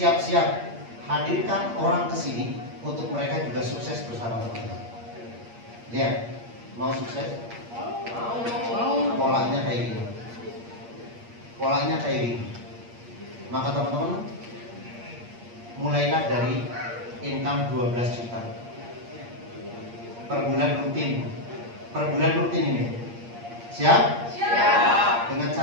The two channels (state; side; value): late; left; 8.6 ms